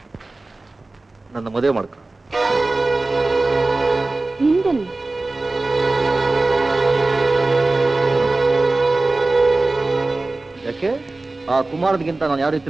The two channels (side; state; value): left; quieter; 3.1 dB